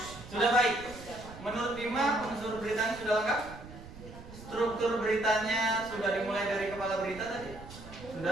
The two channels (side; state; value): right; noise; rumble, 15 dB below the sound